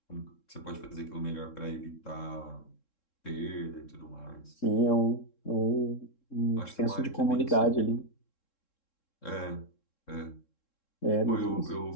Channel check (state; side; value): late; right; 3.7 ms